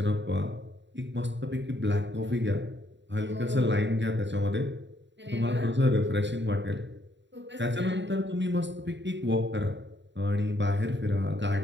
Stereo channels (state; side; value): late; left; 0.52 ms